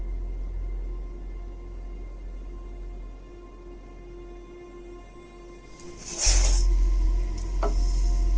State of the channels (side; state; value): both; identical; correlation 1.00